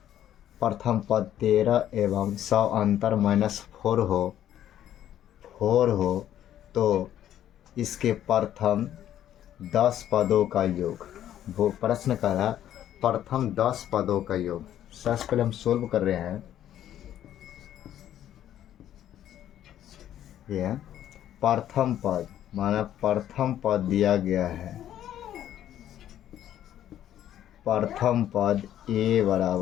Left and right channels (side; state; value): right; quieter; 11.4 dB